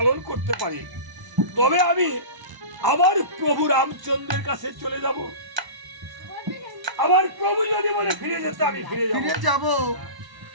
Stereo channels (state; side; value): late; left; 1.0 ms